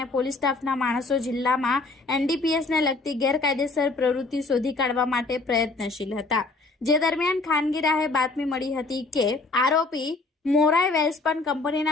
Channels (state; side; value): quieter; right; 3.6 dB